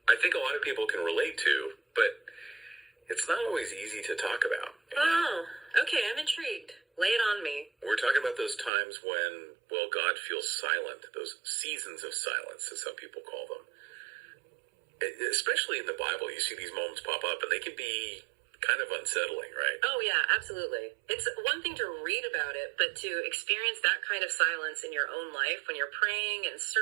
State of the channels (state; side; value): drops out; left; at 8.7 s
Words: I think a lot of people can relate to, but it's not always easy to talk about. Oh, okay, I'm intrigued. Lay it on me. We're talking about those times when, well, God feels silent, those seasons of silence, as some people call them. Especially in the Bible, you see these moments pop up, and they can be kind of unsettling, right? Oh, yeah, absolutely. It's one thing to read about it, but to experience that kind of silence in your own life when you're praying and